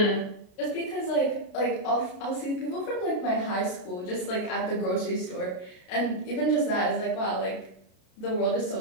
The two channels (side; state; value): right; late; 32 ms